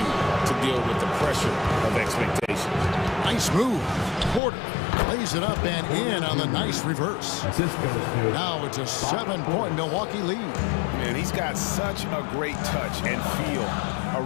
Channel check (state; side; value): drops out; right; at 4.4 s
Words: to deal with the pressure of expectations. Nice move. Porter lays it up and in on the nice reverse. Now it's a 7-point Milwaukee lead. Man, he's got such a great touch and feel